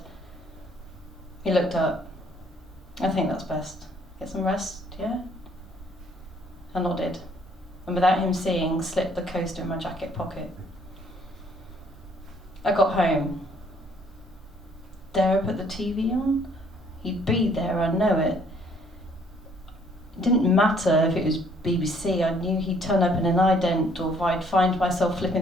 He looked up. "I think that's best. Get some rest, yeah?" I nodded, and without him seeing, slipped the coaster in my jacket pocket. I got home. Dare I put the TV on? He'd be there, I know it. It didn't matter if it was BBC, I knew he'd turn up in an ident, or if I'd find myself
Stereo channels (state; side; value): normal; both; correlation 0.63